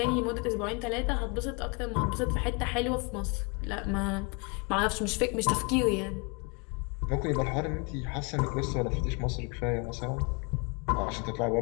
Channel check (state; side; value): quieter; right; 32.0 dB